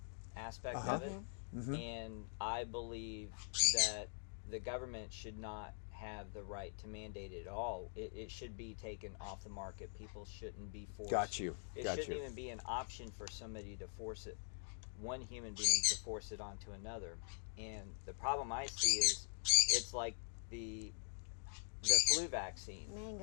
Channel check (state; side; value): silent; right; digital silence